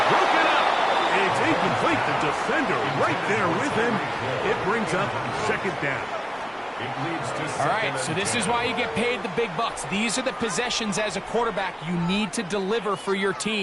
broken up. It's incomplete. The defender right there with him. It brings up 2nd down. All right, so this is why you get paid the big bucks. These are the possessions as a quarterback you need to deliver for your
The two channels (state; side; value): identical; both; correlation 1.00